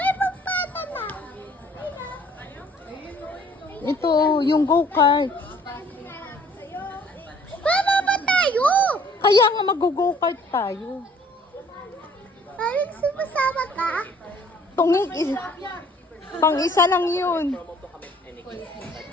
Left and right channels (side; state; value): both; normal; correlation 0.58